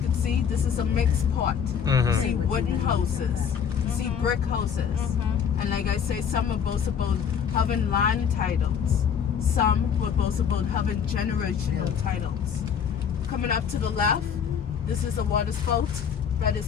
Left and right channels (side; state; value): right; quieter; 7.6 dB